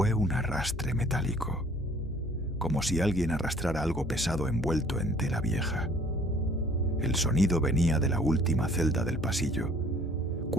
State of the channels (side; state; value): both; normal; correlation 0.56